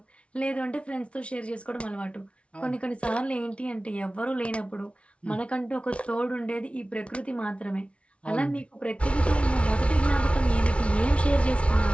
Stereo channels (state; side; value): late; right; 0.061 ms